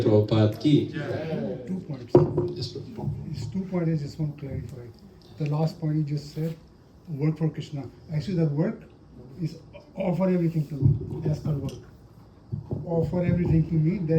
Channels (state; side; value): identical; both; correlation 1.00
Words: Prabhupada ki. 2 points. Yes, Prabhupada. These 2 points I just want to clarify. The last point you just said, work for Krishna. Actually, that work is offer everything to me. That's called work. Offer everything to me,